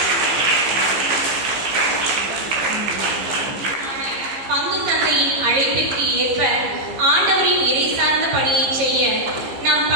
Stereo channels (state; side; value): late; left; 15 ms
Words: பங்கு தந்தையின் அழைப்பிற்கு ஏற்ப ஆண்டவரின் இறை சார்ந்த பணியை செய்ய நம்